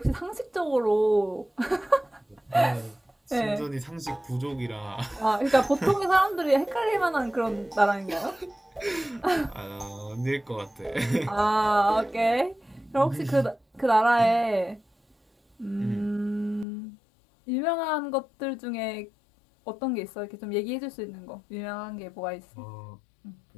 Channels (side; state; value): right; drops out; at 16.7 s